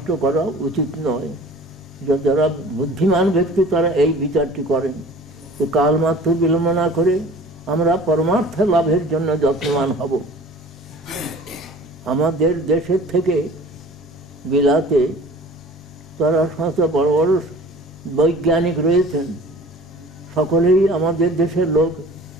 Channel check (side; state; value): both; normal; correlation 0.45